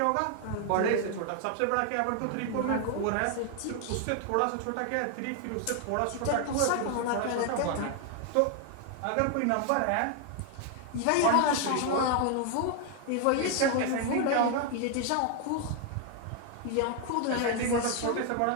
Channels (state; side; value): different; both; correlation 0.00